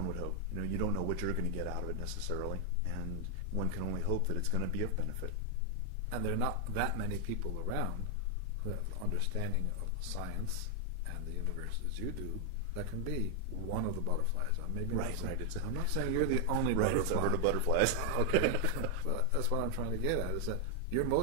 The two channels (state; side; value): different; both; correlation 0.00